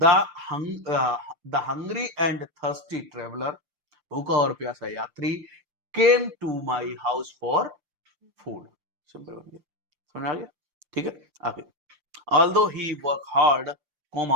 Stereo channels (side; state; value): left; late; 5.7 ms